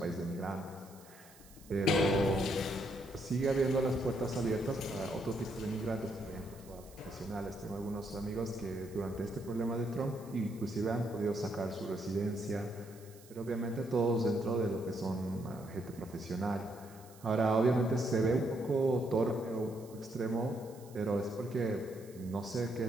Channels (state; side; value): noise; right; hiss, 23 dB below the sound